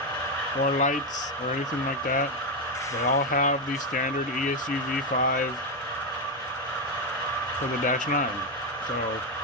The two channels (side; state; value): both; normal; correlation 0.07